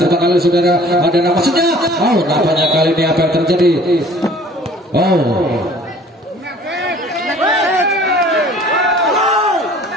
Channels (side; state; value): both; normal; correlation 0.51